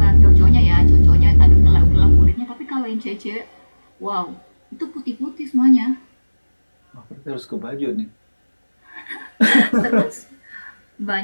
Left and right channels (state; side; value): inverted; both; correlation -1.00